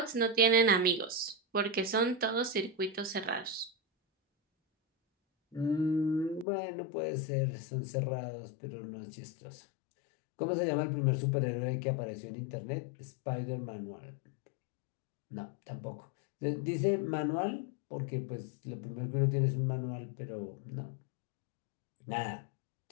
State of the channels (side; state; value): right; drops out; at 6.5 s